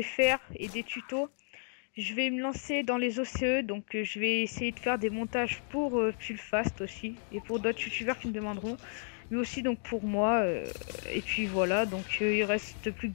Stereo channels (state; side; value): silent; right; 56 dB below the other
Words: faire et des tutos, je vais me lancer dans les OCE, donc je vais essayer de faire des montages pour Pulfast aussi, et pour d'autres youtubeurs qui me demanderont, mais aussi donc pour moi, et puis voilà, donc il reste plus